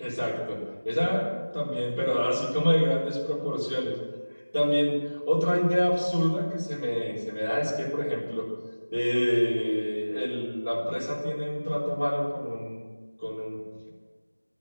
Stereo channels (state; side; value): inverted; both; correlation -1.00